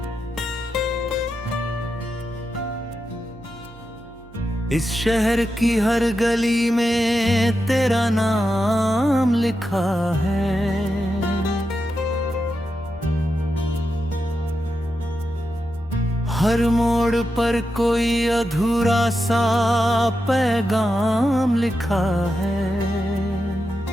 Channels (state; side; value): noise; right; hum, 22 dB below the sound